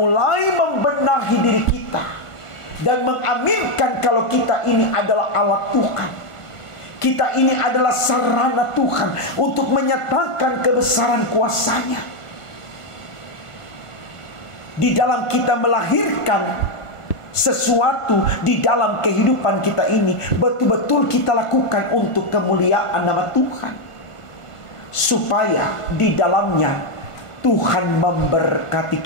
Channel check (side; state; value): right; late; 1.5 ms